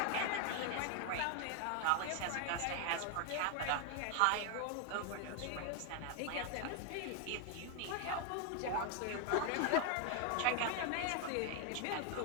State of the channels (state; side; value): different; both; correlation 0.00